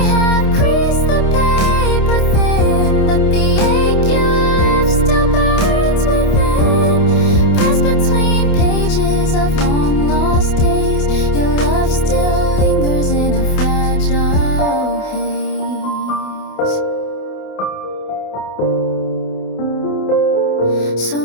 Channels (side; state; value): right; late; 28 ms